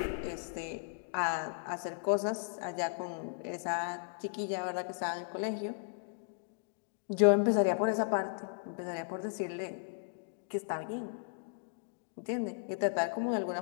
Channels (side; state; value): right; silent; digital silence